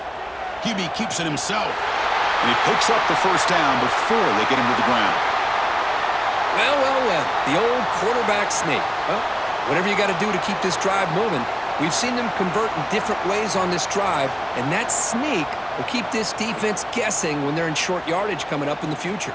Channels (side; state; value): both; identical; correlation 1.00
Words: QB keeps it himself, and he picks up the first down before they get him to the ground. Well, the old quarterback sneak. Well, whatever you got to do to keep this drive moving. We've seen them convert in different ways on this drive, and that sneak will keep this defense guessing when they're in short yardage coming up in the future.